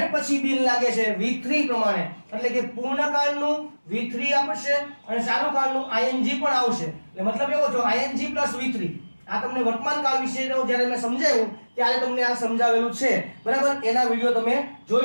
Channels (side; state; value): both; inverted; correlation -1.00